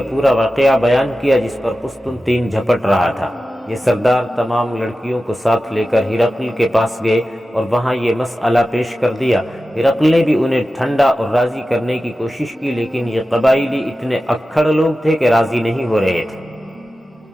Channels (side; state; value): both; normal; correlation 0.94